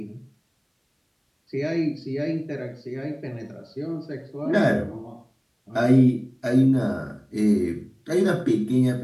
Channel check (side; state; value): both; identical; correlation 1.00